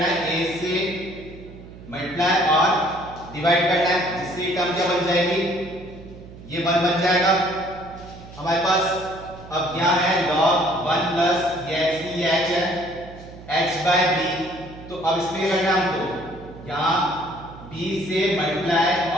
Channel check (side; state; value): right; noise; hum, 17 dB below the sound